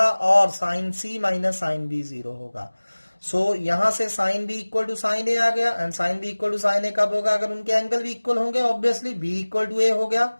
और sine C minus sine B zero होगा। So यहां से sine B equal to sine A आ गया, and sine B equal to sine A कब होगा, अगर उनके एंगल भी इक्वल होंगे, obviously B equal to A हो गया।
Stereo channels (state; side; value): inverted; both; correlation -1.00